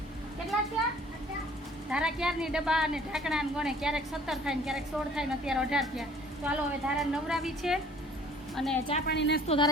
કેટલા થયા ધારા ક્યારની ડબ્બા અને ઢાંકણા ને ગણે ક્યારેક 17 થાય ને ક્યારેક 16 થાય ને અત્યારે 18 થયા. તો હાલો હવે ધારા નવરાવી છે અને ચા પાણી નાસ્તો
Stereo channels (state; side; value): normal; both; correlation 0.53